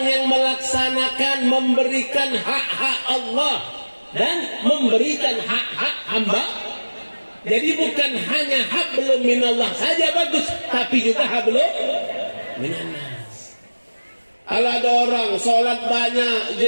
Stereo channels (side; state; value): both; inverted; correlation -1.00